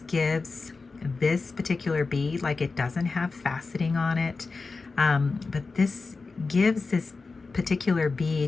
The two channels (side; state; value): right; quieter; 4.1 dB